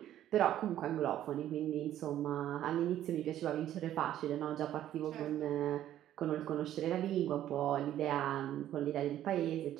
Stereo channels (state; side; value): quieter; left; 12.0 dB